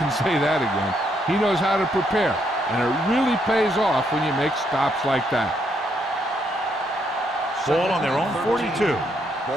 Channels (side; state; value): both; normal; correlation 0.75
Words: say that again. He knows how to prepare, and it really pays off when you make stops like that. Ball on their own 42.